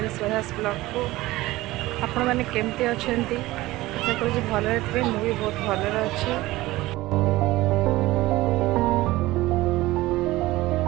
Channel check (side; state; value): left; quieter; 18.2 dB